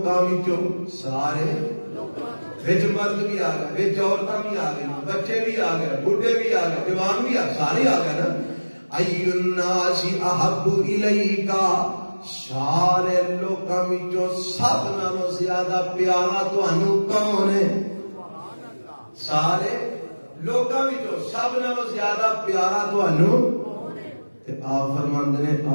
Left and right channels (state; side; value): inverted; both; correlation -1.00